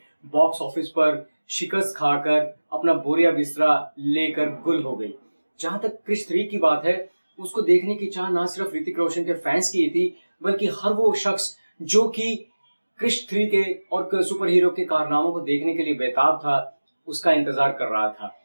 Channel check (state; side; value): inverted; both; correlation -1.00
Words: बॉक्स ऑफिस पर शिकस्त खाकर अपना बोरिया बिस्तरा लेकर गुल हो गई। जहां तक क्रिश 3 की बात है, उसको देखने की चाह ना सिर्फ ऋतिक रोशन के फैंस की थी बल्कि हर वो शख्स जो कि क्रिश 3 के और सुपर हीरो के कारनामों को देखने के लिए बेताब था, उसका इंतजार कर रहा था।